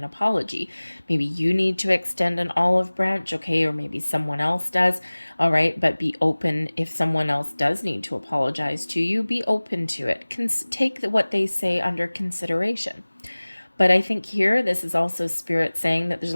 apology. Maybe you need to extend an olive branch, okay, or maybe someone else does, all right, but be open. If someone else does need to apologize to you, be open to it. Take what they say under consideration. But I think here, this is also Spirit saying that there's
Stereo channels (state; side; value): inverted; both; correlation -1.00